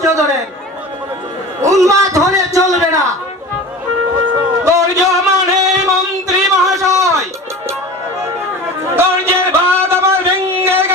ধরেন, উন্মাদ হলে চলবে না। ধৈর্য মানে মন্ত্রী মহাশয়, ধৈর্যের বাঁধ আমার ভেঙে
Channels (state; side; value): normal; both; correlation 0.35